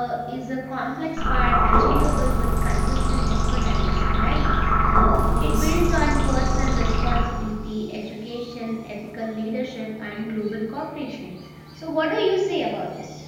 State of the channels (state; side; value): identical; both; correlation 1.00